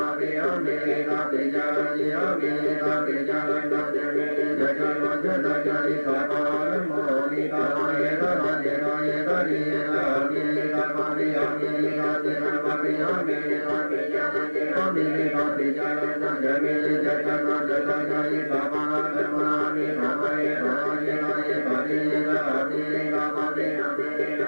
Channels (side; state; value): both; inverted; correlation -1.00